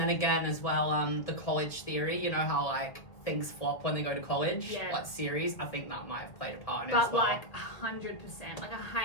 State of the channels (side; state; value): right; late; 2.1 ms